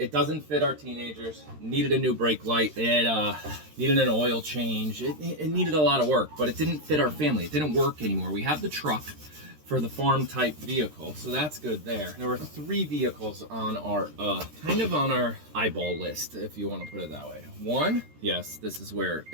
doesn't fit our teenagers. Needed a new brake light. It needed an oil change. It needed a lot of work, but it didn't fit our family. It didn't work anymore. We have the truck for the farm type vehicle, so that's good there. There were 3 vehicles on our kind of on our eyeball list, if you want to put it that way. One, yes, this is where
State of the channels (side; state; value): left; late; 13 ms